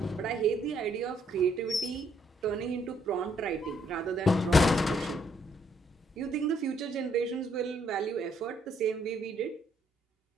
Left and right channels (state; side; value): normal; both; correlation 0.70